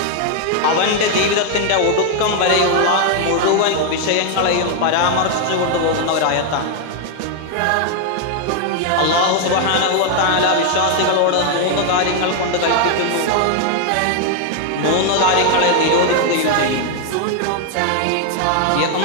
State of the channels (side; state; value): both; different; correlation 0.00